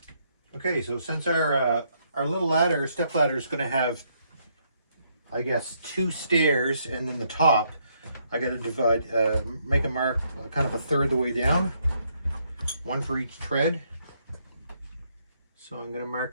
Okay, so since our little ladder, step ladder, is going to have, I guess, 2 stairs and then the top, I got to divide, make a mark kind of a third the way down, one for each tread. So I'm going to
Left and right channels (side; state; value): both; inverted; correlation -0.73